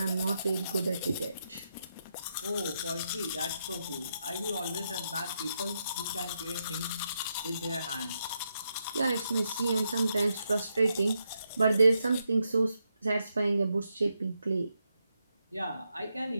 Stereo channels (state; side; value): inverted; both; correlation -0.82